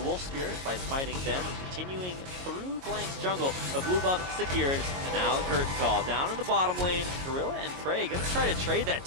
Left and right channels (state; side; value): late; left; 22 ms